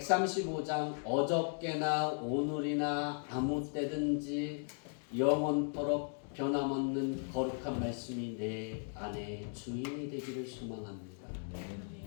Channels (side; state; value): right; silent; 53 dB below the other